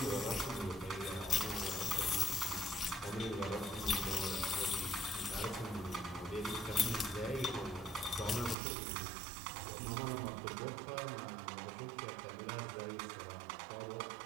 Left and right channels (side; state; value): left; drops out; at 8.6 s